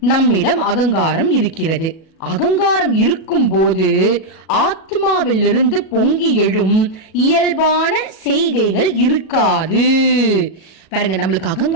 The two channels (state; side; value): late; right; 37 ms